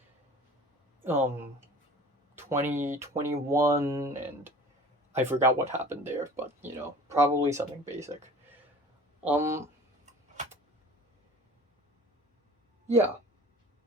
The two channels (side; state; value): both; normal; correlation 0.44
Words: 2021, and I forgot what happened there, but probably something basic. Yeah.